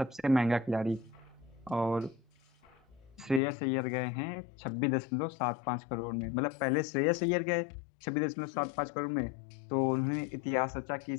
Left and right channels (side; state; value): right; drops out; at 3.4 s